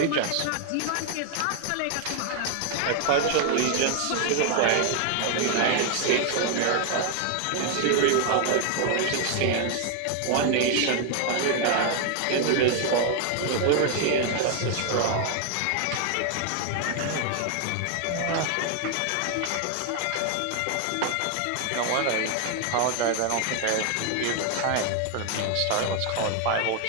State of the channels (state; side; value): different; both; correlation 0.00